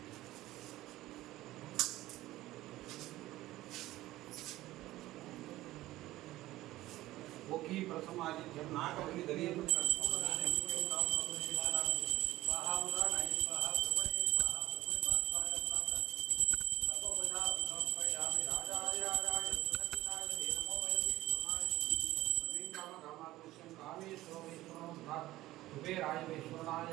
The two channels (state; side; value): quieter; left; 16.4 dB